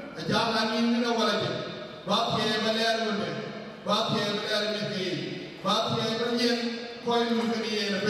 jalan ini awal aja. Bahagia belar mana, bahagia belar mesti, bahagia berjaya kau mungkin yang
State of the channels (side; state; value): both; identical; correlation 1.00